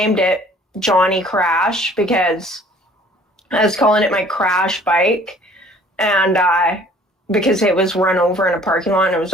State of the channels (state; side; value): normal; both; correlation 0.54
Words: it Johnny Crash because I was calling it my crash bike, and because it was run over in a parking lot, and